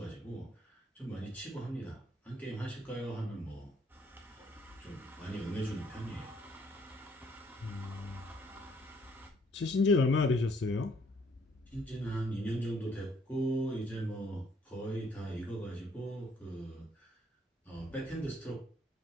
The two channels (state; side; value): normal; both; correlation 0.65